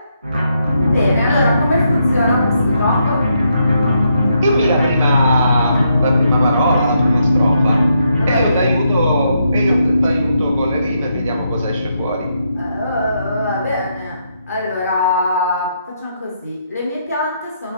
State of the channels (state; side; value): inverted; both; correlation -0.78